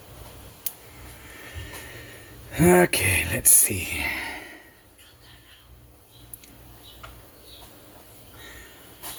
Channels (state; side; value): identical; both; correlation 1.00